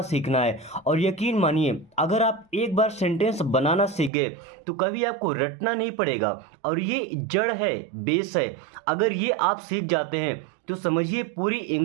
सीखना है। और यकीन मानिए, अगर आप एक बार सेंटेंस बनाना सीख गए तो कभी आपको रटना नहीं पड़ेगा। और ये जड़ है, बेस है। अगर ये आप सीख जाते हैं तो समझिए पूरी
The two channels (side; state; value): left; drops out; at 4.1 s